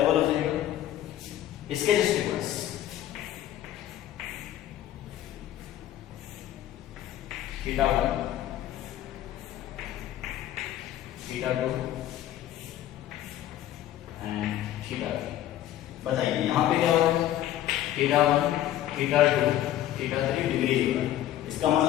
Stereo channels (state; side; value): quieter; right; 12.7 dB